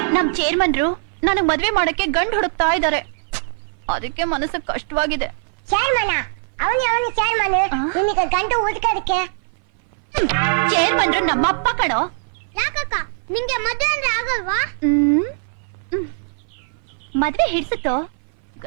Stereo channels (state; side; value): silent; left; 59 dB below the other